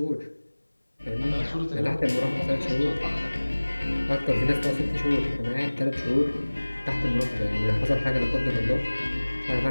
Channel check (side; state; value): both; inverted; correlation -1.00